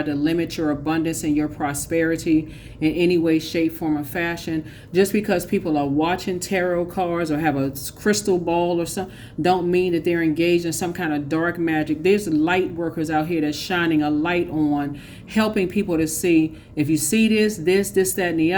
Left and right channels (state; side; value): identical; both; correlation 1.00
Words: to limit your abundance and your prosperity in any way, shape, form, or fashion. Just because people are watching tarot cards or have a crystal ball or something, don't mean that they're engaged in some kind of dark magic. There's light workers out here that's shining a light on, helping people to see, if you see this, that, and the